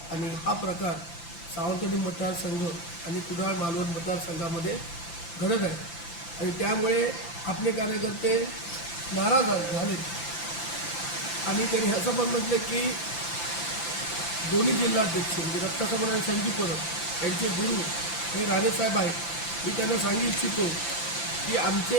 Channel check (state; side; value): late; right; 5.9 ms